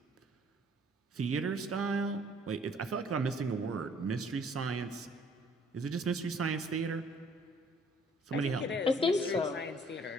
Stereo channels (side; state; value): both; normal; correlation 0.59